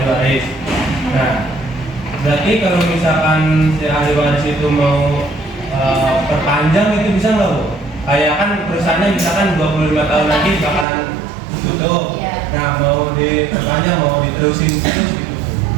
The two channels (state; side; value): drops out; left; at 10.9 s